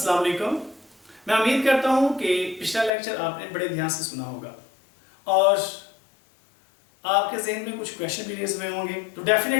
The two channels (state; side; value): drops out; right; at 2.9 s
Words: वालेकुम। मैं उम्मीद करता हूँ कि पिछला लेक्चर आपने बड़े ध्यान से सुना होगा और आपके जहन में कुछ क्वेश्चन भी रेज हुए होंगे। तो